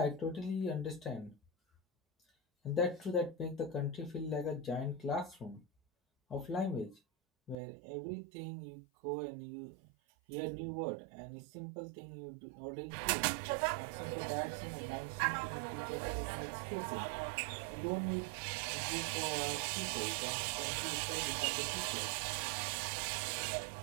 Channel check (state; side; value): drops out; left; at 7.6 s